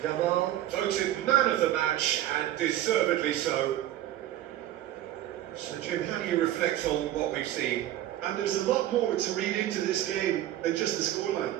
Yamal voted man of the match, and deservedly so. So Jim, how do you reflect on what we've seen? And there's a lot more to read into this game than just the scoreline.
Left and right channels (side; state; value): left; quieter; 13.2 dB